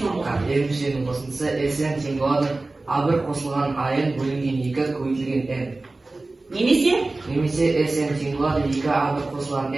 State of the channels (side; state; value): left; quieter; 3.2 dB